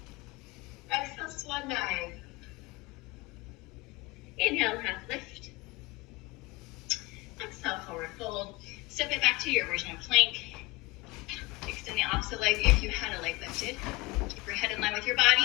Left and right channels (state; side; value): quieter; right; 22.1 dB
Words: Exhale, swan dive. Inhale, half lift. Exhale, forward fold. Step it back to your version of plank. Extend the opposite leg if you had a leg lifted. Keep your head in line with your